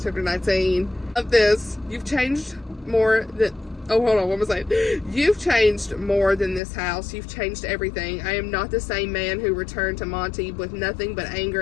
Chapter 19 of this. You've changed more than, oh, hold on, what was I saying? You've changed more than this house. You've changed everything. I am not the same man who returned to Monty with nothing but anger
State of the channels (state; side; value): drops out; right; at 6.6 s